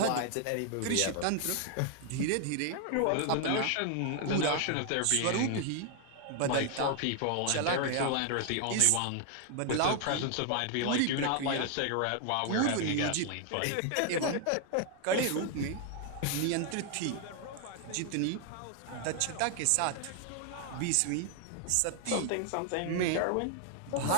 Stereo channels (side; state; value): both; different; correlation 0.00